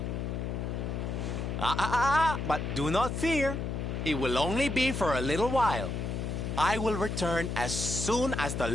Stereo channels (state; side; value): noise; left; hum, 3 dB below the sound